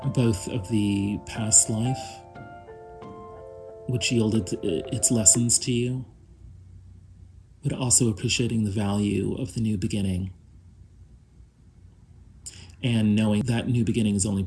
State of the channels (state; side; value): identical; both; correlation 1.00